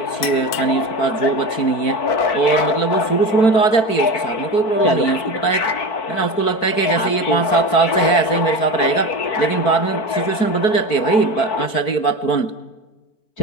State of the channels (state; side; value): late; right; 4.5 ms